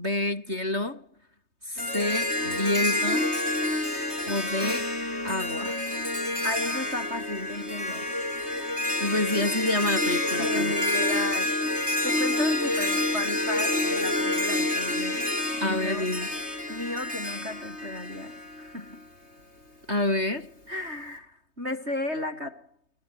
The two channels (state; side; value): late; left; 3.2 ms